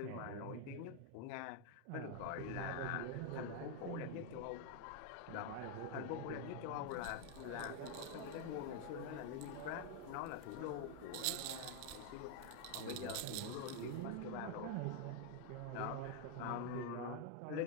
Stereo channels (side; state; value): both; different; correlation 0.00